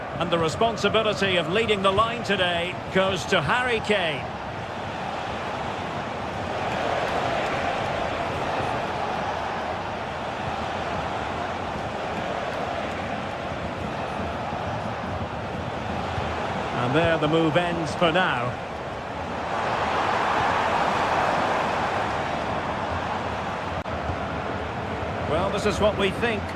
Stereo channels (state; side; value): identical; both; correlation 1.00